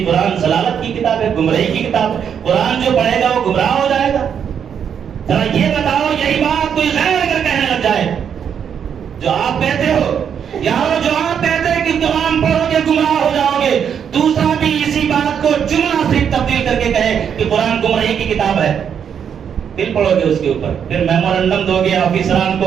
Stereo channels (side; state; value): left; quieter; 7.9 dB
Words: قرآن ضلالت کی کتاب ہے، گمراہی کی کتاب ہے، قرآن جو پڑھے گا وہ گمراہ ہو جائے گا۔ ذرا یہ بتاؤ، یہی بات کوئی غیر اگر کہنے لگ جائے جو آپ کہتے ہو، یارو جو آپ کہتے ہیں کہ قرآن پڑھو گے گمراہ ہو جاؤ گے، دوسرا بھی اسی بات کو جملہ صرف تبدیل کر کے کہے کہ قرآن گمراہی کی کتاب ہے، پھر پڑھو گے اس کے اوپر، پھر میمورنڈم دو گے آفیسران